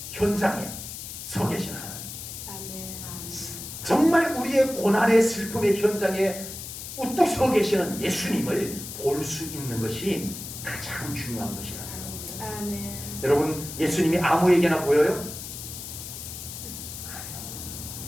현장에 서 계신 하나님. 아멘. 정말 우리의 고난의 슬픔의 현장에 우뚝 서 계시는 예수님을 볼 수 있는 것이 가장 중요한 것이라고요. 아멘. 여러분, 예수님이 아무에게나 보여요?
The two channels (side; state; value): left; noise; hiss, 9 dB below the sound